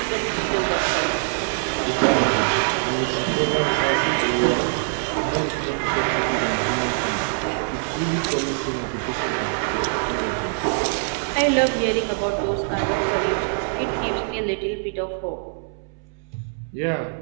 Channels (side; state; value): left; silent; 63 dB below the other